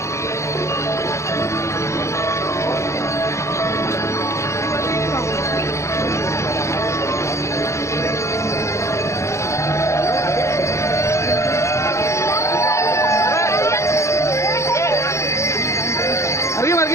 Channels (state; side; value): late; right; 0.14 ms